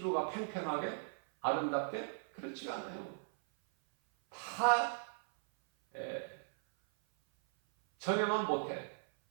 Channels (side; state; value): left; silent; 53 dB below the other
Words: 팽팽하게 아름답게? 그렇지가 않아요. 다 전에만 못해.